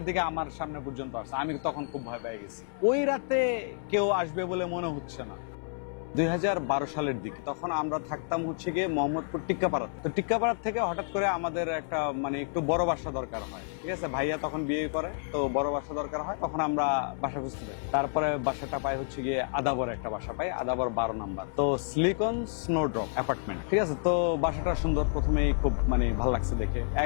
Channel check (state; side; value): silent; right; 58 dB below the other